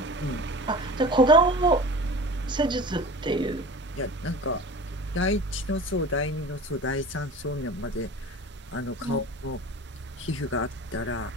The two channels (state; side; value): normal; both; correlation 0.36